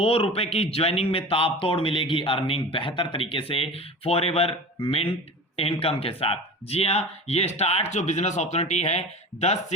रुपए की ज्वाइनिंग में ताबतोड़ मिलेगी अर्निंग बेहतर तरीके से फॉरएवर मिंट इनकम के साथ। जी हाँ, ये स्टार्ट जो बिजनेस अपॉर्चुनिटी है 10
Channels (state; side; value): normal; both; correlation 0.34